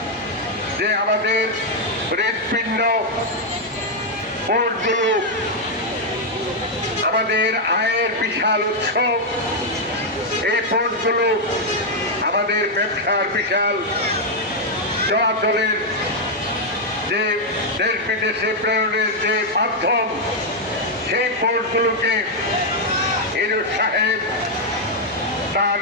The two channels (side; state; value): both; normal; correlation -0.01